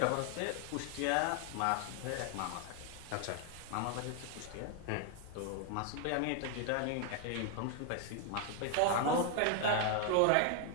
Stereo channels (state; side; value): different; both; correlation 0.00